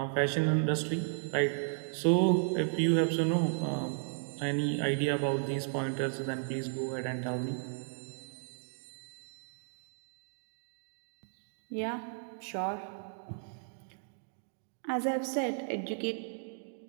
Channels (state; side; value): silent; left; digital silence